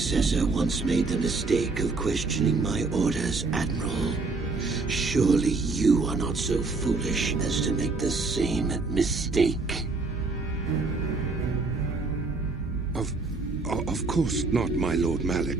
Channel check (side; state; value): left; quieter; 3.8 dB